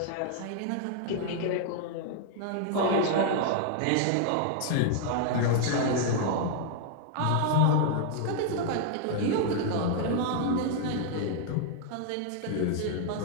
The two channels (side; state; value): both; different; correlation 0.00